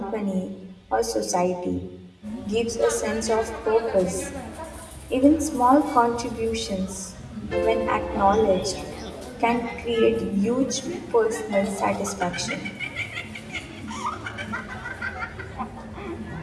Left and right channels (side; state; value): both; identical; correlation 1.00